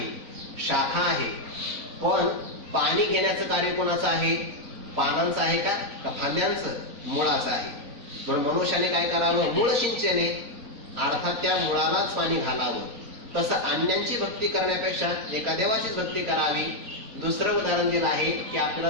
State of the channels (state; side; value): late; left; 4.0 ms